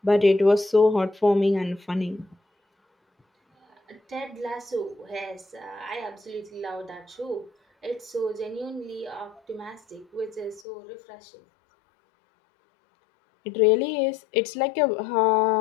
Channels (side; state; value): right; drops out; at 10.7 s